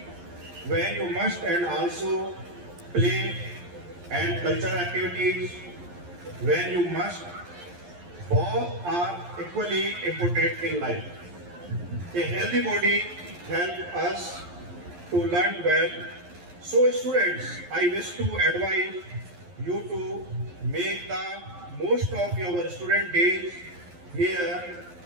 when you must and also play and cultural activities when you must. Both are equally important in life. A healthy body helps us to learn well. So students, I wish to advise you to make the most of your student days here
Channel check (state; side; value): late; left; 11 ms